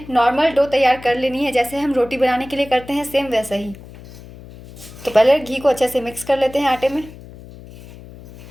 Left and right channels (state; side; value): noise; left; hum, 18 dB below the sound